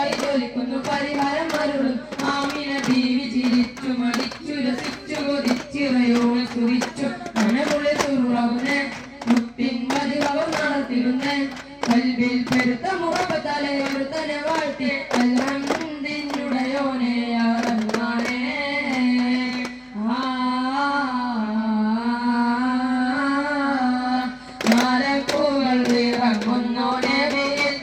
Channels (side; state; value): both; identical; correlation 1.00